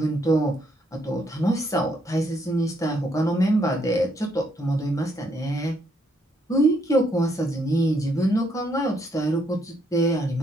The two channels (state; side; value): normal; both; correlation 0.73